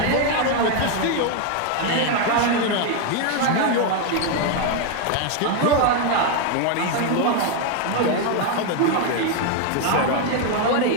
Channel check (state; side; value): different; both; correlation 0.01